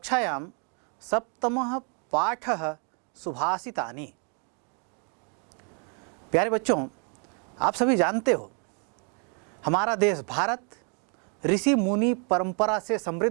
सप्तमः पाठः सुभाषितानि। प्यारे बच्चों, आप सभी जानते हो हमारा देश भारत ऋषि मुनि परंपरा से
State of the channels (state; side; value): quieter; left; 39.0 dB